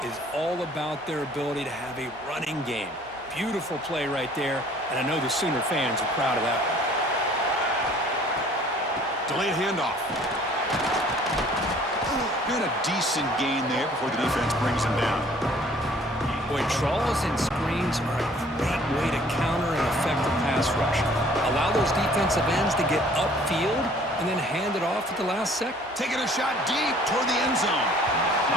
is all about their ability to have a running game. Beautiful play right there, and I know the Sooner fans are proud of that one. Delayed handoff. Got a decent gain there before the defense brings him down. Boy, draws and screens are a great way to counter an effective pass rush. Allow those defensive ends to get upfield and then hand it off at the last second. Taking a shot deep toward the end zone.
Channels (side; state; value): both; normal; correlation 0.55